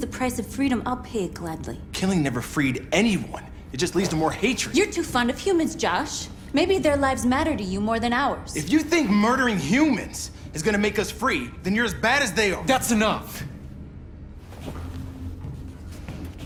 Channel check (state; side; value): identical; both; correlation 1.00